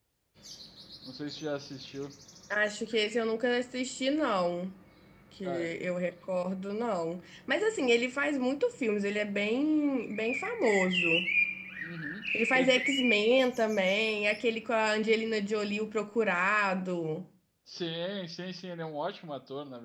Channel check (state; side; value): identical; both; correlation 1.00